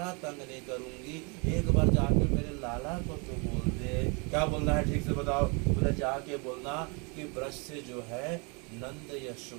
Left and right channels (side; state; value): left; quieter; 32.4 dB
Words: तंग नहीं करूँगी, एक बार जाके मेरे लाला को तो बोल दे। क्या बोलना है ठीक से बताओ? बोले जाके बोलना कि ब्रज से जो है नंद